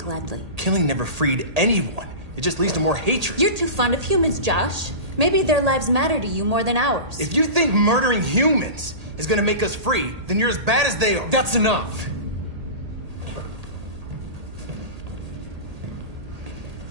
Killing never freed anyone. It just leads to more hatred. You're too fond of humans, Josh. Maybe their lives matter to you more than ours. If you think murdering humans is gonna make us free, then you're as bad as they are. That's enough!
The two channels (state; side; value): late; left; 1.8 ms